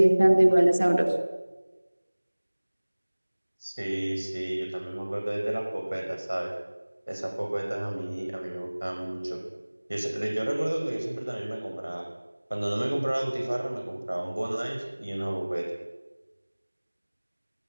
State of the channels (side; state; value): both; inverted; correlation -1.00